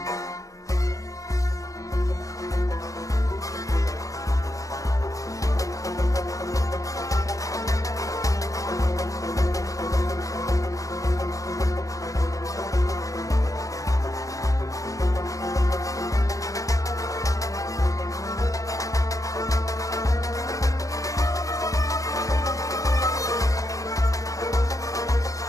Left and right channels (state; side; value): late; right; 0.16 ms